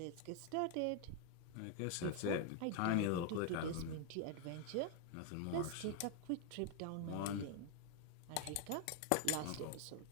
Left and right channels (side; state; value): both; different; correlation 0.00